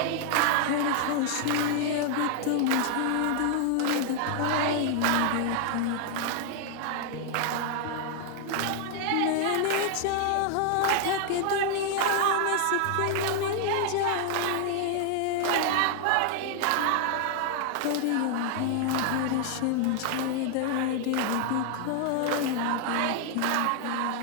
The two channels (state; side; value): different; both; correlation 0.00